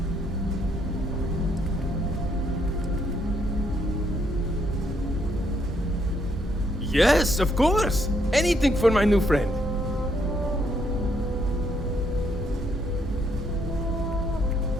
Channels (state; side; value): normal; both; correlation 0.73